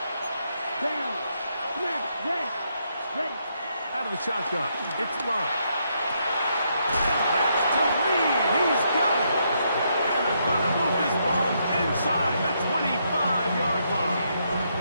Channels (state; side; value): inverted; both; correlation -0.77